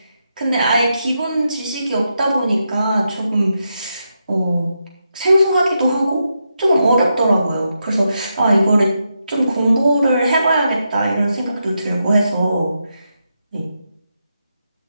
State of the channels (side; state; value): both; inverted; correlation -0.85